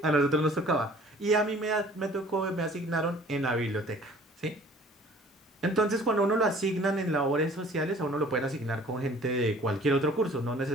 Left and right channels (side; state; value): both; normal; correlation 0.51